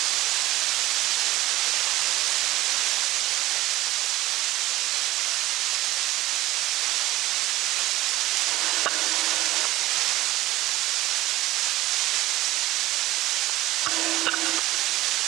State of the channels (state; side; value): quieter; left; 17.3 dB